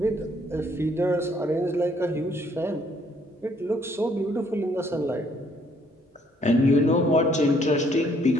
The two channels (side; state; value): both; normal; correlation 0.66